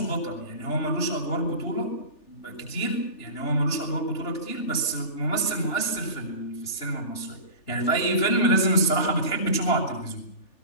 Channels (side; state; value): right; late; 3.4 ms